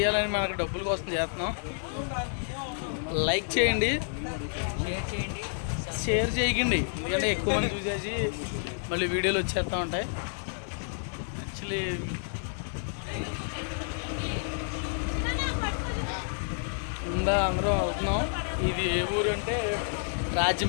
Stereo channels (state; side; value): silent; right; digital silence